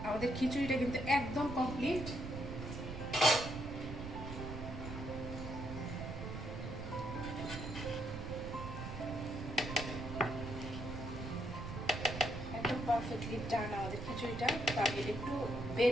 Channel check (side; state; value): right; noise; rumble, 7 dB below the sound